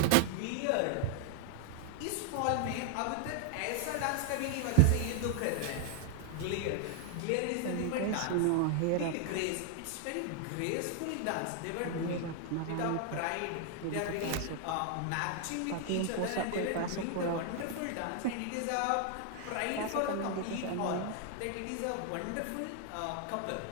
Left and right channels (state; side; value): different; both; correlation 0.00